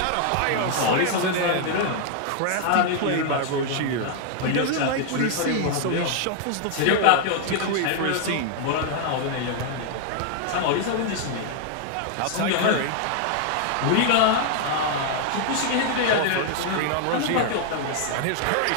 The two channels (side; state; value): both; different; correlation 0.00